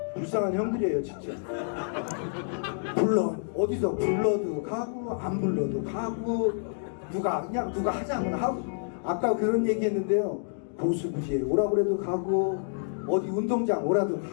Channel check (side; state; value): right; silent; digital silence